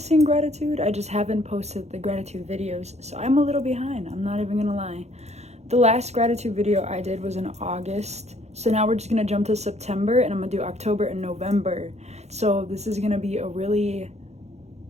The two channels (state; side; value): late; left; 0.32 ms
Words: gratitude. I just haven't posted the gratitude videos, so I'm a little behind. I'm not even gonna lie. The last gratitude video I did was in August, so now we're just gonna jump to September, and I'm gonna do October and November. So this is gonna be a really